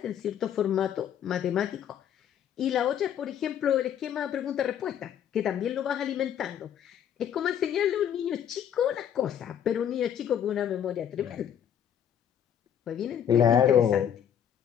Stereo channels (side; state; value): right; quieter; 9.3 dB